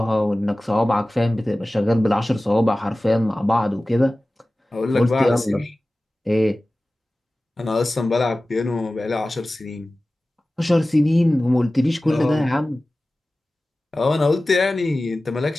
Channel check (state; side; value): normal; both; correlation 0.97